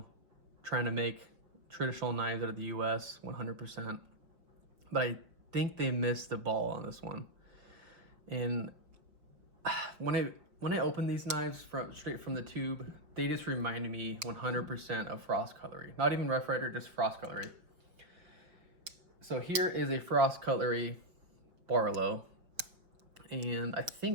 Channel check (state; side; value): late; left; 5.5 ms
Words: trying to make traditional knives out of the US 100%. But I think they missed the ball on this one. And when I opened these knives straight from the tube, they just reminded me 100% of Frost Cutlery. Not even Rough Rider, just Frost Cutlery. So here is a Frost Cutlery Barlow, and I